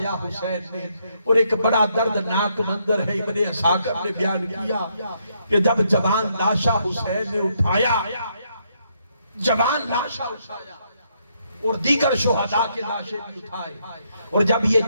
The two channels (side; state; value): both; inverted; correlation -0.75